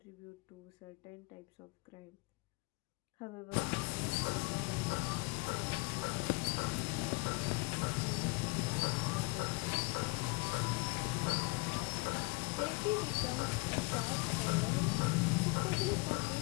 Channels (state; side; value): quieter; right; 26.9 dB